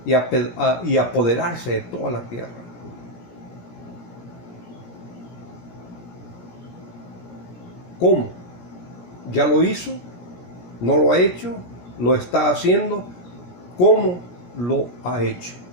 y apoderarse de toda la tierra. ¿Cómo? ¿Ya lo hizo? ¿No lo ha hecho? ¿Lo está haciendo? ¿Cómo lo ha hecho?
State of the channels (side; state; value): right; late; 17 ms